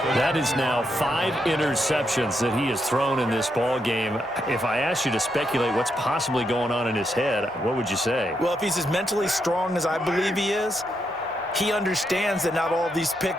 That is now 5 interceptions that he has thrown in this ball game. If I asked you to speculate what's possibly going on in his head, what would you say? Well, if he's as mentally strong as I believe he is, he understands that not all of these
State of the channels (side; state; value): both; normal; correlation 0.80